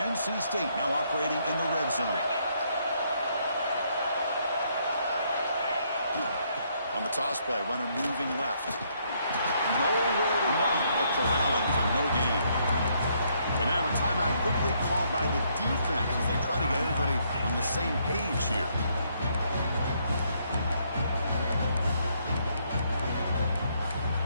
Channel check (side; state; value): both; inverted; correlation -0.71